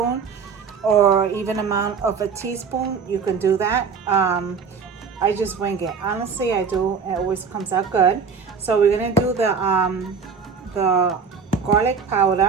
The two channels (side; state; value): left; quieter; 5.8 dB